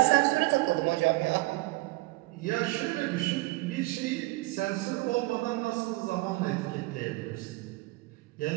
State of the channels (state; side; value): quieter; left; 22.2 dB